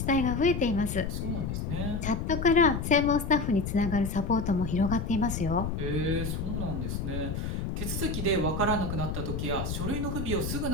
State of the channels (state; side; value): noise; left; rumble, 3 dB below the sound